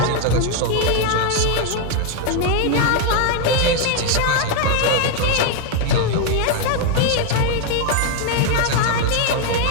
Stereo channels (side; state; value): both; different; correlation 0.01